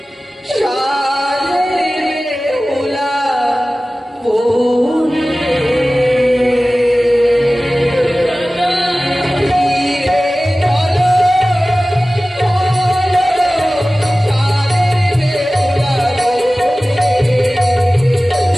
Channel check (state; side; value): normal; both; correlation 0.97